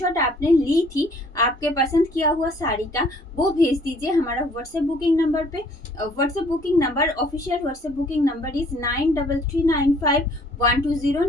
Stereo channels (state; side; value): normal; both; correlation 0.59